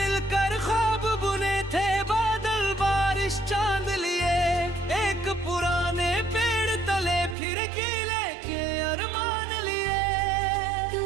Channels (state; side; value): drops out; left; at 7.4 s